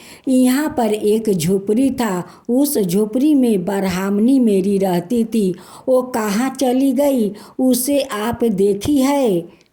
यहाँ पर एक झोपड़ी था, उस झोपड़ी में ब्राह्मणी मेरी रहती थी, वो कहाँ चली गई, उसे आप देखी है?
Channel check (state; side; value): identical; both; correlation 1.00